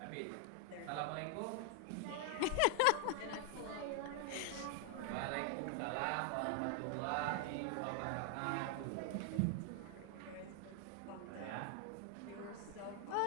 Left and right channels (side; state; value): both; different; correlation 0.00